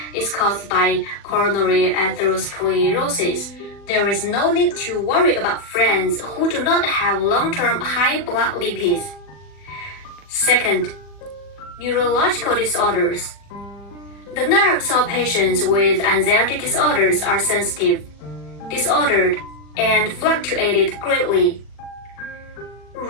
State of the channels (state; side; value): late; right; 40 ms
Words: is caused by coronary atherosclerosis, there is no need to worry about friends who do not have long-term high blood lipids. Second, neurological disorders. The nerves of patients with anxiety disorders are sensitive, disordered, and fluctuated greatly,